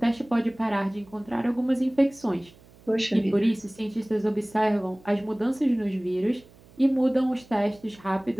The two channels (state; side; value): noise; right; hum, 25 dB below the sound